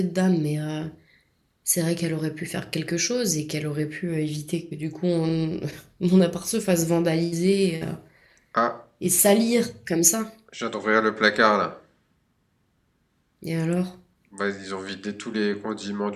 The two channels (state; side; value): identical; both; correlation 1.00